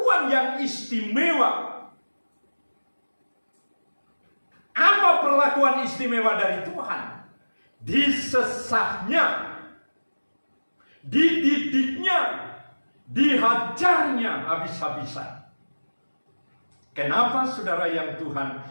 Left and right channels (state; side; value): inverted; both; correlation -1.00